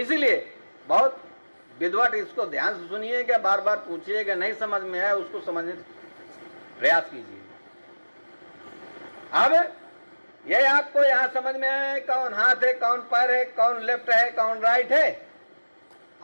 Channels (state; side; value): inverted; both; correlation -1.00